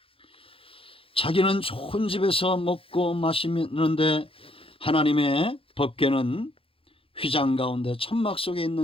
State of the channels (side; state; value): right; late; 0.27 ms